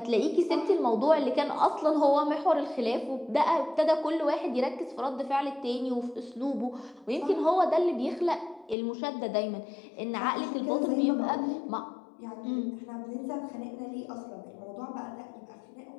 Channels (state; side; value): drops out; right; at 8.8 s